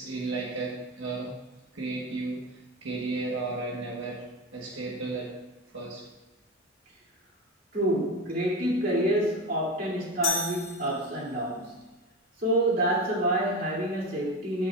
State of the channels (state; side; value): normal; both; correlation 0.22